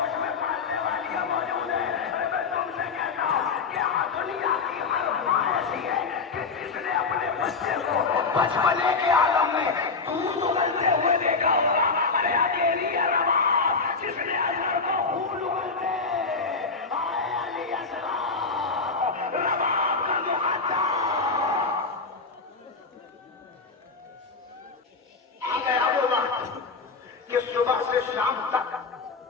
میں پالنے والی موجود ہے۔ میں تم سے کہتا ہوں کہ دنیا کی ہر ماں ایسی ہے کہ جس نے اپنے بچے کو بچپنے کے عالم میں دودھ اگلتے ہوئے دیکھا ہوگا۔ ارے اکیلی ہے رباب جس نے اصغر کو خون اگلتے آئے علی اصغر رباب کا مقدم آ گیا وہ وقت کہ صبح سے شام تک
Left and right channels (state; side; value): quieter; right; 4.5 dB